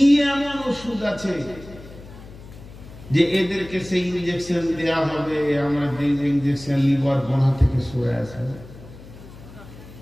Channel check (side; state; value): left; noise; hum, 18 dB below the sound